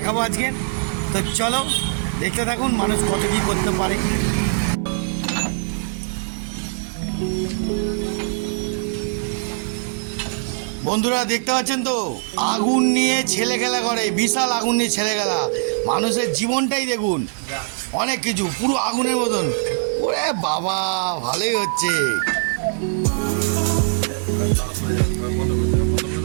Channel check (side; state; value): left; silent; 64 dB below the other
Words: আজকে। তো চলো দেখতে থাকুন মানুষ কত কী করতে পারে। বন্ধুরা দেখতে পাচ্ছেন তো, আগুন নিয়ে ছেলে খেলা করে, বিশাল আগুন নিয়ে ছেলে খেলা। মানুষের জীবনটাই দেখুন, অনেক কিছু পুরো আগুনের মতন। ওরে বাবা, ভালোই হচ্ছে।